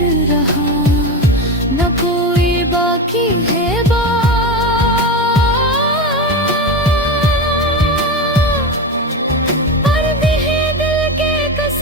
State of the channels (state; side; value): normal; both; correlation 0.20